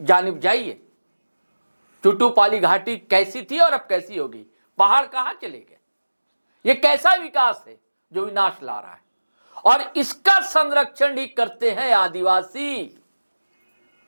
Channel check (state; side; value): inverted; both; correlation -1.00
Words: जानिब जाइए। टुटुपाली घाटी कैसी थी और अब कैसी होगी? पहाड़ कहां चले गए? ये कैसा विकास है जो विनाश ला रहा है? और इसका संरक्षण ही करते हैं आदिवासी।